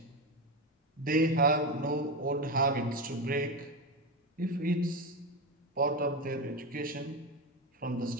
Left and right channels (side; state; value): both; normal; correlation 0.16